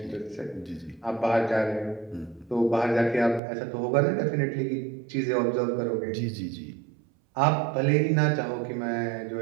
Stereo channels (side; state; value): left; drops out; at 3.4 s